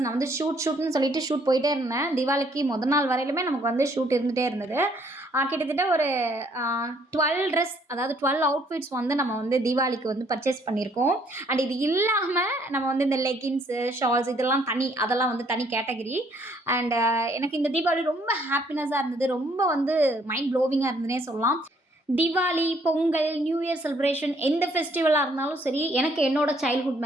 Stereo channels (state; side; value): normal; both; correlation 0.65